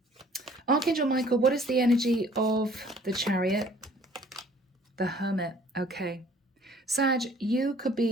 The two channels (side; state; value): both; normal; correlation 0.55